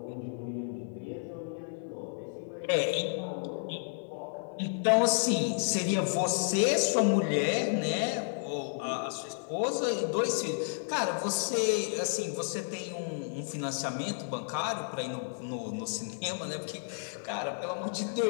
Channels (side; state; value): right; silent; digital silence